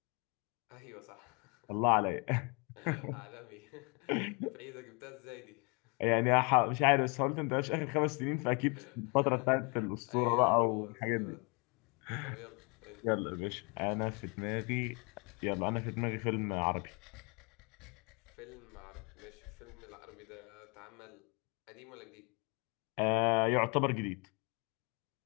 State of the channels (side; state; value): right; quieter; 32.2 dB